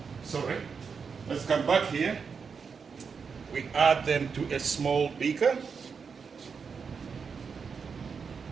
Sorry. Let's come back here. We add them to a small beaker.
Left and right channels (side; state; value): left; quieter; 5.8 dB